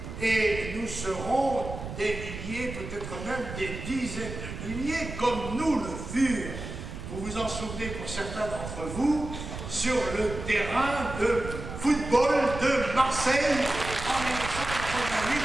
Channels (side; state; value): right; noise; rumble, 9 dB below the sound